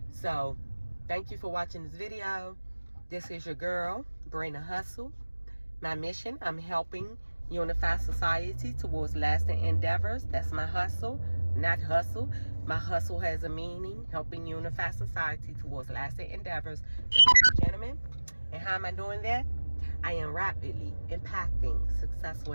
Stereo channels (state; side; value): inverted; both; correlation -1.00